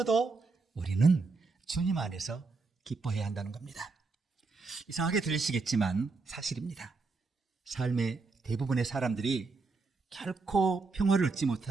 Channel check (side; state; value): left; quieter; 4.1 dB